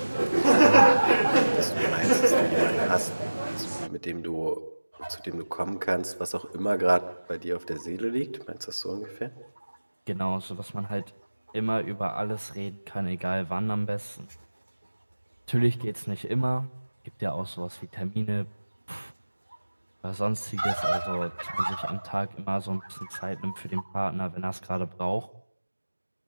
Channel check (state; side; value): inverted; both; correlation -1.00